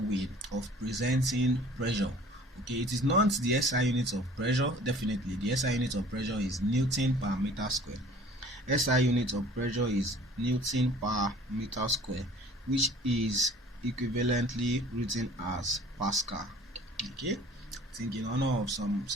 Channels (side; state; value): both; normal; correlation 0.49